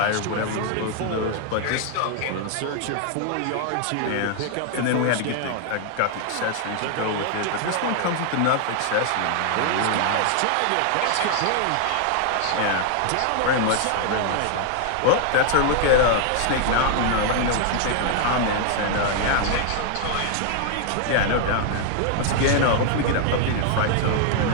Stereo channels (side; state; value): both; different; correlation 0.00